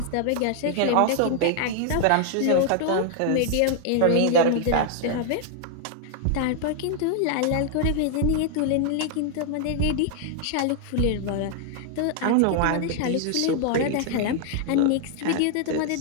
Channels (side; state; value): both; different; correlation 0.00